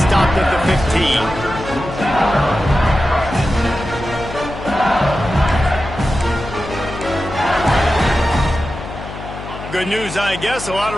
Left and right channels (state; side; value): noise; left; hum, 11 dB below the sound